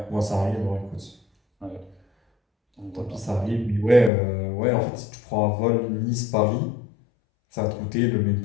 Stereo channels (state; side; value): drops out; right; at 4.1 s